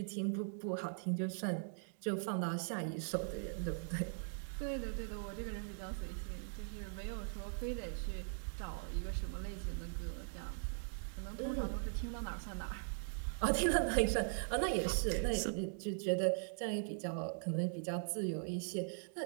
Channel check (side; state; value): left; silent; digital silence